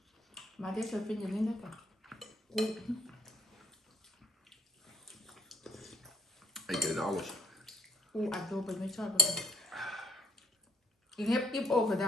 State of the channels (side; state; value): both; normal; correlation 0.64